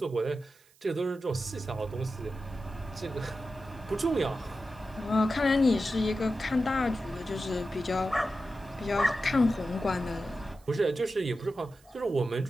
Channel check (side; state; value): right; noise; hiss, 29 dB below the sound